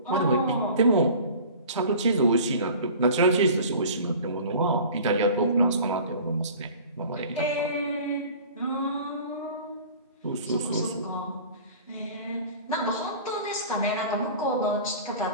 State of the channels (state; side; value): inverted; both; correlation -0.42